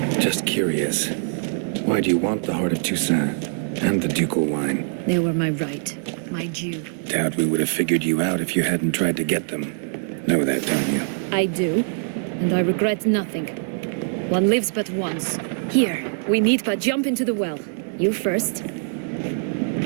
Just curious. Why do you want the heart of Toussaint and the ducal wine? They were my right. My due. Doubt we would have figured you out if you hadn't tried to get them. Know that, don't you? I do. And I regret nothing. One lives but once. Here, we need but jump into the well. You first.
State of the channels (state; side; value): silent; left; 63 dB below the other